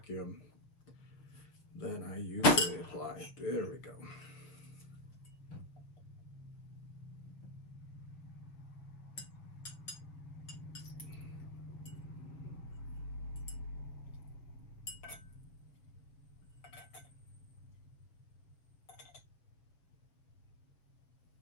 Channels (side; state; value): right; late; 6.4 ms